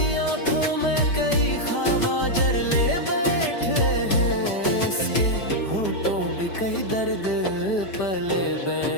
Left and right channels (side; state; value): right; late; 4.9 ms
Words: आंखों में कई ख्वाब जरले बैठे हैं, इसके होठों पे कई दर्द पले